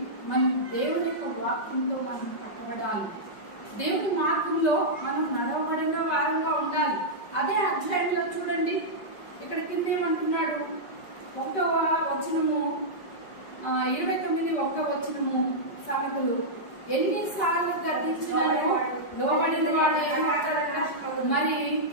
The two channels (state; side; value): late; right; 5.2 ms